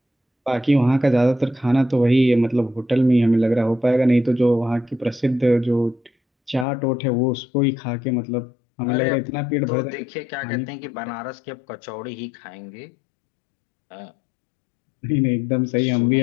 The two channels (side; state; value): right; drops out; at 6.7 s